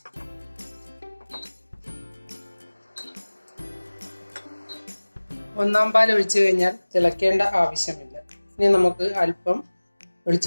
ഒന്നാം പാൽ ഒഴിച്ചു കഴിഞ്ഞാൽ തിളക്കേണ്ട ആവശ്യമില്ല. ഇനി നമുക്ക് അല്പം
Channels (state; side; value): inverted; both; correlation -1.00